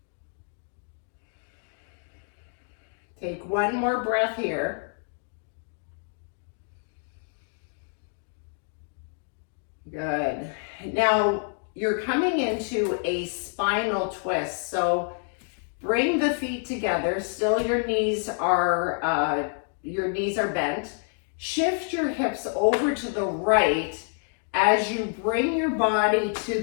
Take one more breath here. Good. Now you're coming into a spinal twist. So bring the feet together. Still your knees are bent. Shift your hips over to the right as you bring your body to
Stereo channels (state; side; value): silent; right; 58 dB below the other